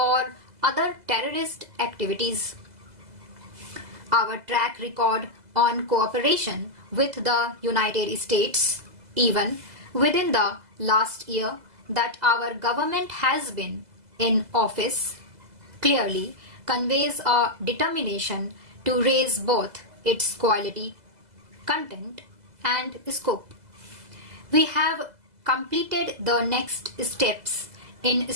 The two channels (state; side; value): late; left; 2.0 ms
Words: other terrorist activities. Our track record on cooperation with the United States, even within the last year that our government has been in office, clearly conveys a determination to raise both its quality, content, and scope. We have completed the next steps in